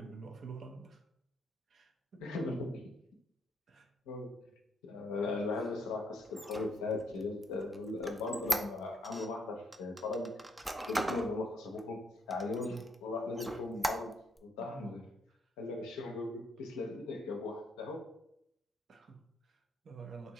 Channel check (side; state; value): both; normal; correlation 0.73